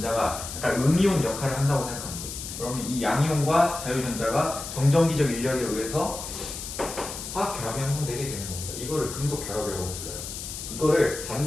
약간 음이온 역할을 한다고 생각하면 돼. 그러면 이 양이온과 자유전자가 정전기적 인력에 의해서 화학 결합이 형성되게 되는 겁니다. 이거를 금속 결합이라고 불러요. 이거를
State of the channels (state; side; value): noise; left; hiss, 8 dB below the sound